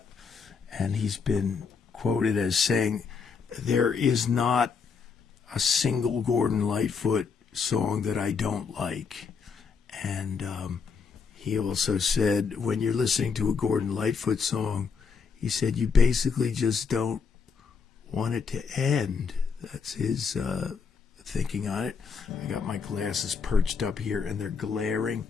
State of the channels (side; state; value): right; quieter; 5.6 dB